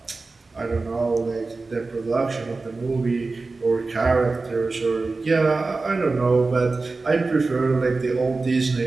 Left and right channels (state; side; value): quieter; left; 3.7 dB